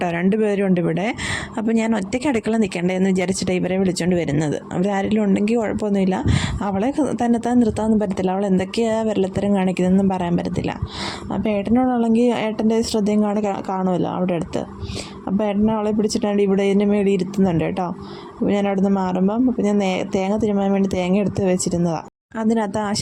2 പേരും ഉണ്ട് ഇവിടെ. അപ്പോൾ ഞാൻ ഒറ്റയ്ക്ക് അടുക്കള നിൽക്കണ്ടേ എന്ന് വിചാരിച്ചിട്ട് ഇവരെ വിളിച്ചുകൊണ്ട് വരുന്നത്. അവരാരെങ്കിലും ഉണ്ടെങ്കിൽ കുഴപ്പമൊന്നുമില്ല. അവളെ തന്നെത്താൻ നിർത്താനൊന്നും പറ്റത്തില്ല, അവൾ എന്തൊക്കെയാണ് വിരലത്തരം കാണിക്കുന്നതെന്നും പറയാൻ പറ്റത്തില്ല. അപ്പോൾ ഏട്ടനോടുള്ളെങ്കിൽ ഏട്ടൻ്റെ ശ്രദ്ധയും കാണുമല്ലോ അവിടെ അടുത്ത്. അപ്പോൾ ഏട്ടനെ അവളെ പിടിച്ചിട്ടാണ്ട് ഇവിടെ ഇതിൻ്റെ മേളിൽ ഇരുത്തുന്നുണ്ട് കേട്ടോ. അപ്പോൾ ഞാൻ അവിടെ നിന്ന് മാറുമ്പം അപ്പോൾ ഞാൻ തേങ്ങ തിരുമാൻ വേണ്ടി തേങ്ങ എടുത്ത് വെച്ചിരുന്നതാണ്. അതിനകത്ത് ആ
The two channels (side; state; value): both; identical; correlation 1.00